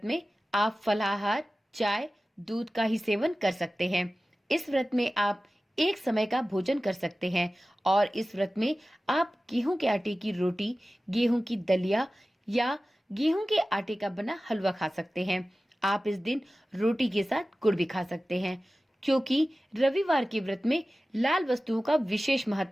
में आप फलाहार, चाय, दूध का ही सेवन कर सकते हैं। इस व्रत में आप एक समय का भोजन कर सकते हैं और इस व्रत में आप गेहूं के आटे की रोटी, गेहूं की दलिया या गेहूं के आटे का बना हलवा खा सकते हैं। आप इस दिन रोटी के साथ गुड़ भी खा सकते हैं। क्योंकि रविवार के व्रत में लाल वस्तुओं का विशेष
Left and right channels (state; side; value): normal; both; correlation 0.96